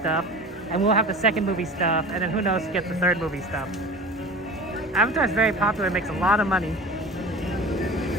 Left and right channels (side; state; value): both; normal; correlation 0.36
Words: and we'll have the second movie stuff, and then who knows who gets the third movie stuff. Avatar's very popular, makes a lot of money.